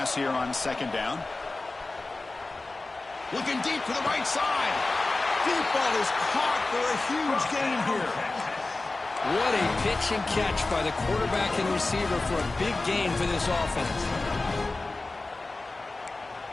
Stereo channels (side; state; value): right; quieter; 3.3 dB